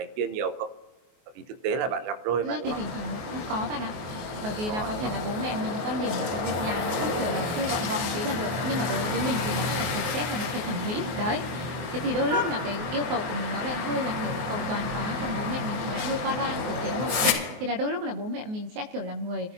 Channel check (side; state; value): left; late; 23 ms